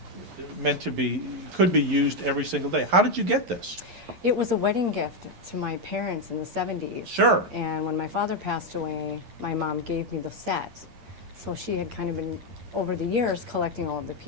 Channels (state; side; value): late; left; 11 ms